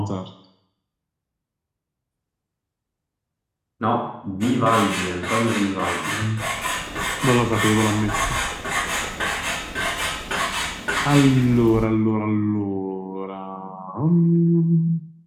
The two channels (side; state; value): both; identical; correlation 1.00